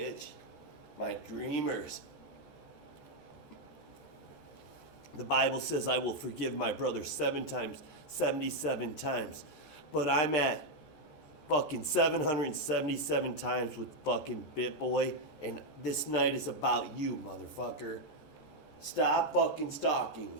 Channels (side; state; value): right; late; 13 ms